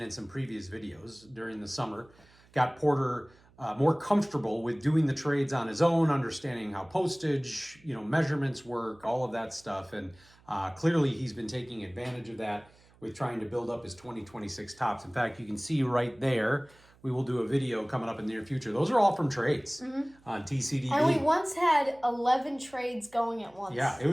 in some previous videos during the summer, got Porter more comfortable with doing the trades on his own, understanding how postage, measurements work, all of that stuff. And clearly he's been taking advantage of that with trying to build up his 2026 tops. In fact, you can see right there, we will do a video coming up in the near future. Those are all from trades on TCDB. And we once had 11 trades going at once. Yeah, it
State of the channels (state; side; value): noise; right; hum, 28 dB below the sound